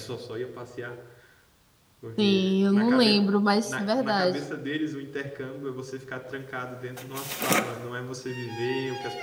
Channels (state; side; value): identical; both; correlation 1.00